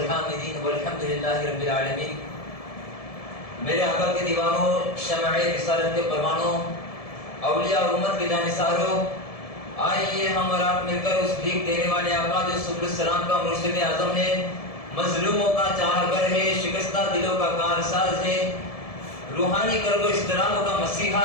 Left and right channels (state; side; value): late; right; 1.7 ms